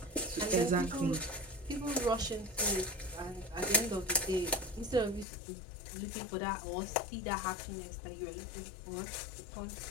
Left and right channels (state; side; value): drops out; right; at 5.2 s